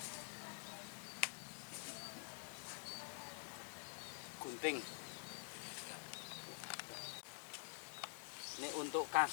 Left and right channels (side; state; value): right; silent; digital silence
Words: Gunting. Ini untuk